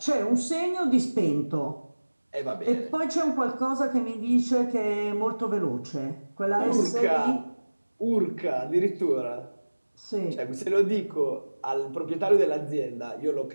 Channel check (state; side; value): inverted; both; correlation -1.00